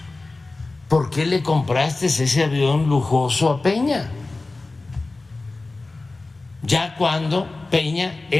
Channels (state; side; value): quieter; right; 3.3 dB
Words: ¿por qué le compraste ese avión lujoso a Peña? Ya cuando Peña